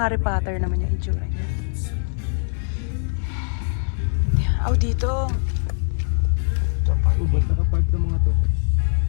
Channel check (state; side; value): silent; right; 64 dB below the other